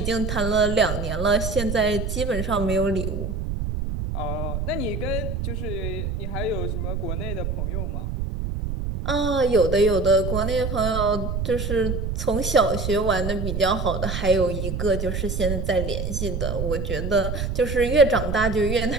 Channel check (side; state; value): right; noise; rumble, 3 dB below the sound